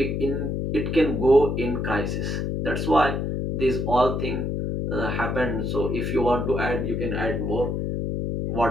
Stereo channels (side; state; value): left; noise; hum, 1 dB below the sound